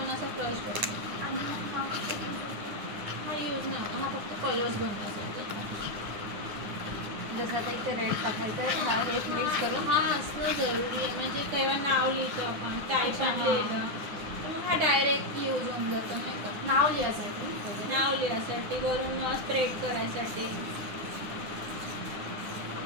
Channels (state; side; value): late; left; 9.7 ms